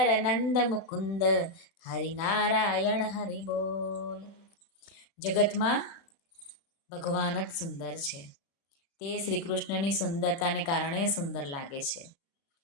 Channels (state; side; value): late; right; 36 ms